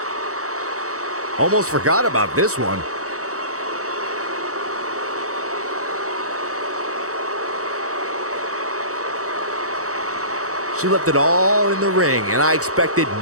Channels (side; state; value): left; late; 0.65 ms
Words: Almost forgot about this one. She left it all in the ring, and I expected